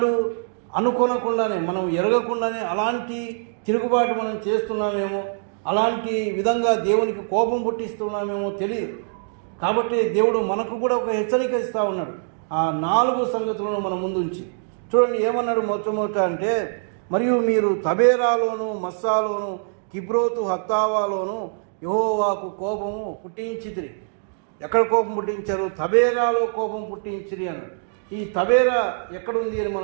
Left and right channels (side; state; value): left; silent; digital silence